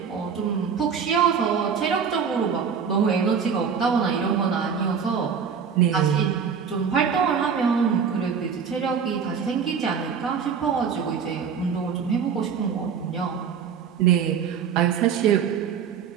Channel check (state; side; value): quieter; left; 6.8 dB